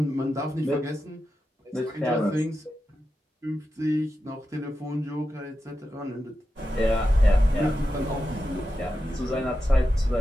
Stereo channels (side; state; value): both; normal; correlation 0.90